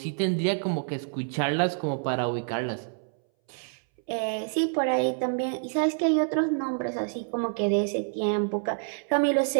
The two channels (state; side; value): silent; left; 60 dB below the other